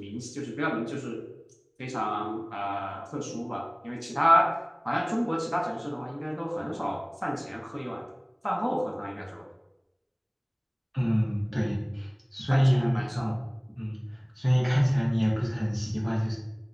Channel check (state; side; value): identical; both; correlation 1.00